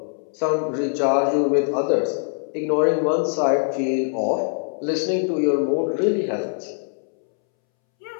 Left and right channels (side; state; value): right; silent; 64 dB below the other